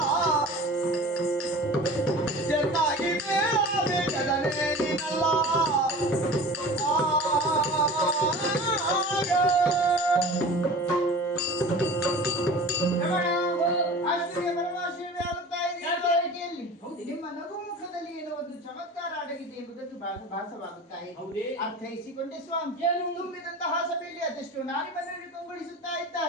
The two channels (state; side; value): normal; both; correlation 0.38